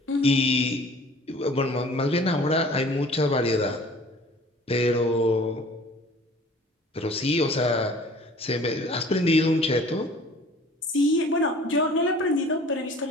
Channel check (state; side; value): normal; both; correlation 0.48